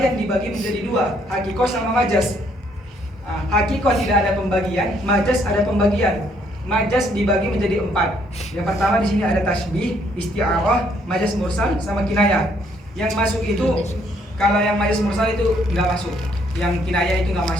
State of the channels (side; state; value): both; normal; correlation 0.68